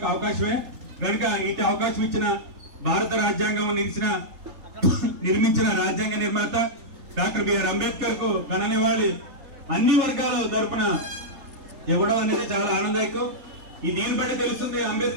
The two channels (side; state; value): left; late; 3.8 ms